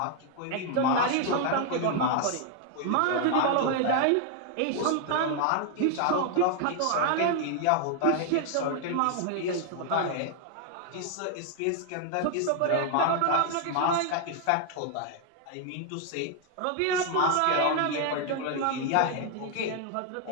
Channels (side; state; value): both; different; correlation 0.00